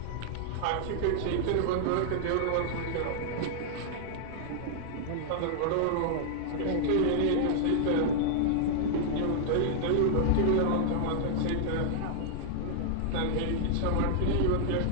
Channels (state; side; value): different; both; correlation -0.01